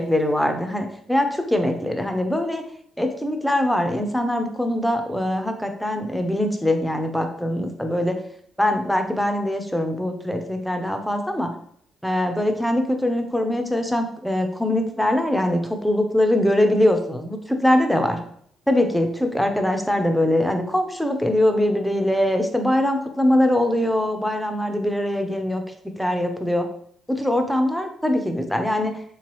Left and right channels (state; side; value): normal; both; correlation 0.89